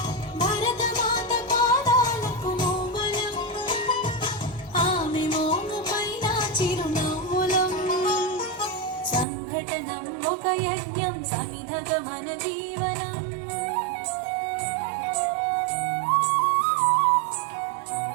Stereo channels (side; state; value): left; drops out; at 9.2 s